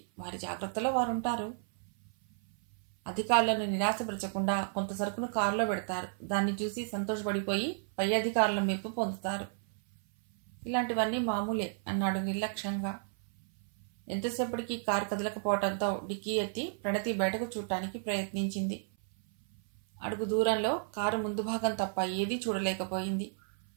వారి జాగ్రత్తలో వారుంటారు. అధికారులను నిరాశపరచకుండా కొంత సరుకును కారులో పెడతారు. దాన్ని చూసి సంతోషపడిపోయి పై అధికారుల మెప్పు పొందుతారు. ఇలాంటివన్నీ మామూలే అన్నాడు నిర్లక్ష్యంగా. ఎంతసేపటికి కారు కదలకపోవడంతో డిక్కీ ఎత్తి ప్రణతి బయటకు చూడటానికి ప్రయత్నించింది. అడుగు దూరంలో కారు ముందు భాగం తప్ప ఏదీ చూడలేకపోయింది.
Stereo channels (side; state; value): left; silent; 56 dB below the other